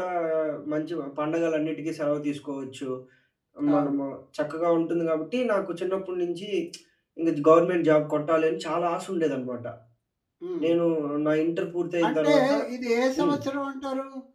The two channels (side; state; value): both; identical; correlation 1.00